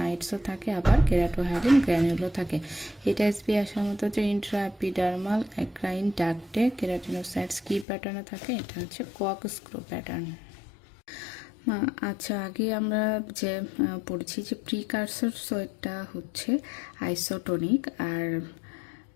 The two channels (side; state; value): right; drops out; at 7.9 s